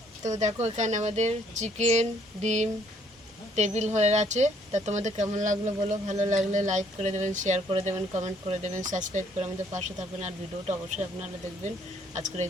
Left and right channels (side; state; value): both; normal; correlation 0.65